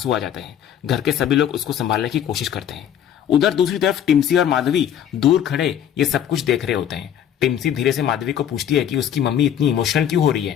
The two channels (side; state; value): right; quieter; 9.7 dB